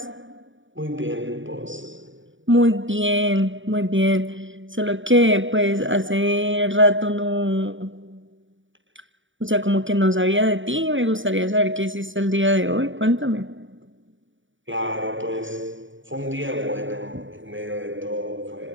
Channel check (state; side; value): late; left; 0.56 ms